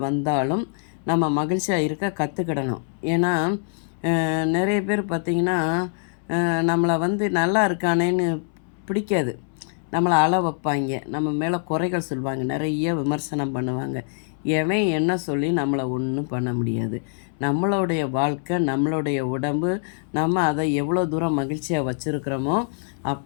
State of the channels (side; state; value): right; silent; 63 dB below the other